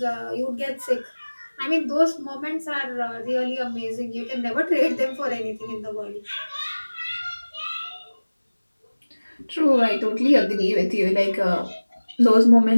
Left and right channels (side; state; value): both; inverted; correlation -1.00